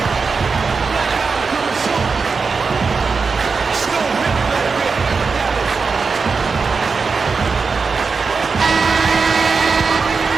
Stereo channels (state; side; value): quieter; left; 4.8 dB